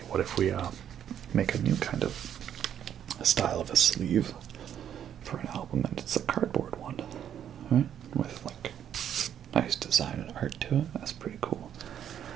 what if we make a new kind of style of a sleeve for an album, and it's a cardboard one, right? With like nice design and art to it. That's pretty cool.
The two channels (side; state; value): left; quieter; 9.6 dB